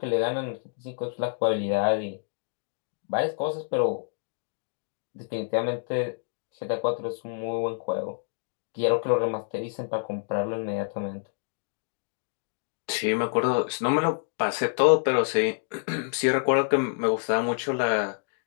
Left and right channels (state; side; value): silent; right; digital silence